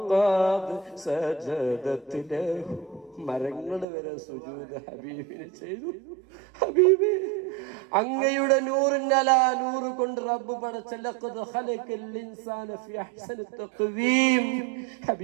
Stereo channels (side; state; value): left; drops out; at 3.9 s